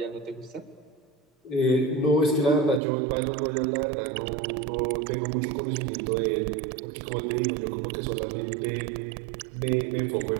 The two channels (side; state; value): left; drops out; at 2.8 s